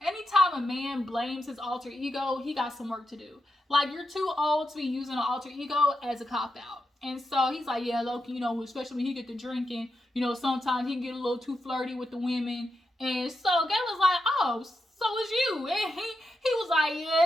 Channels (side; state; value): both; normal; correlation 0.86